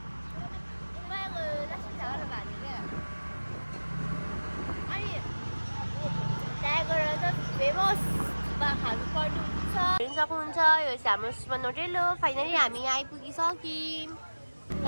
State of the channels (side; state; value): both; inverted; correlation -1.00